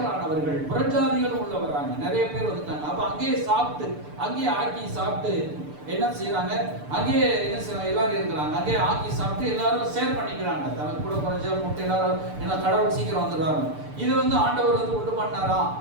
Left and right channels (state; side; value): late; left; 6.8 ms